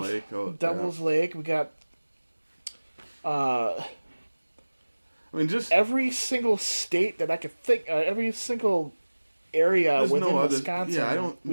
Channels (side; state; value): both; inverted; correlation -1.00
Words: Lake. Devil's Lake. We got. I mean, just every single state that I could think, every single area within Wisconsin,